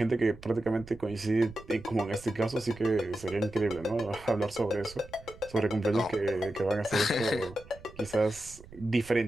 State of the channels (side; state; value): right; noise; rumble, 19 dB below the sound